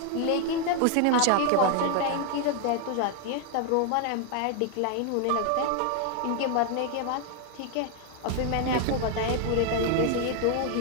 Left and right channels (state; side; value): different; both; correlation 0.00